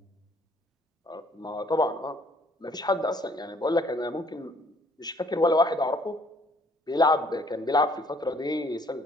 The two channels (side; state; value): both; normal; correlation 0.62